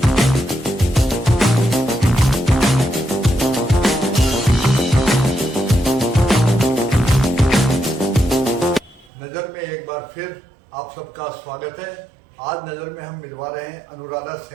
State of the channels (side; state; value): left; drops out; at 9.1 s